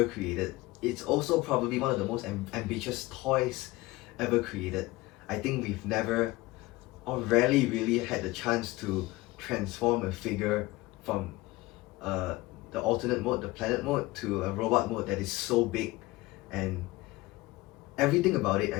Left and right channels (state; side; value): quieter; right; 19.9 dB